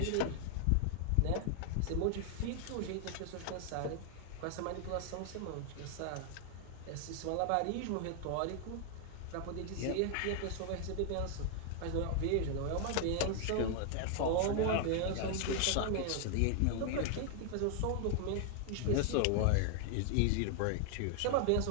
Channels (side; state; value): both; different; correlation 0.00